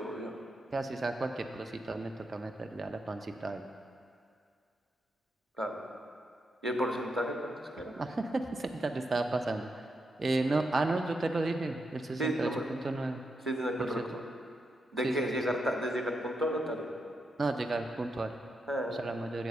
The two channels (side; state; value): both; normal; correlation 0.84